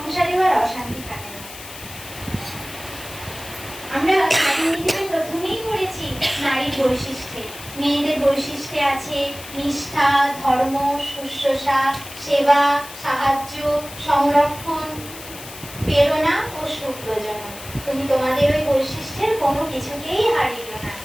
আর অশান্তি থাকে না। আমরা প্রথমেই পড়েছি নারীর বৈশিষ্ট্যে, মেয়েদের বৈশিষ্ট্যে আছে নিষ্ঠা, ধর্ম, শুশ্রূষা, সেবা, সাহায্য, সংরক্ষণ, প্রেরণা ও সুপ্রজনন। তুমি তোমাদের ওই বৈশিষ্ট্যের কোনো কিছুকেই হারিও না,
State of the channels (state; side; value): noise; left; hiss, 14 dB below the sound